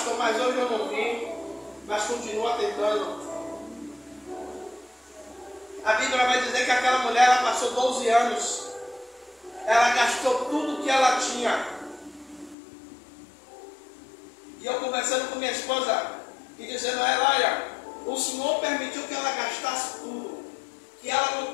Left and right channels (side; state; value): right; drops out; at 12.6 s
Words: mas hoje eu não vi. Mas continua tentando. A Bíblia vai dizer que aquela mulher, ela passou 12 anos. Ela gastou tudo que ela tinha. E eu conversando com minha esposa e dizendo a ela, olha, o Senhor permitiu que ela gastasse tudo. Que ela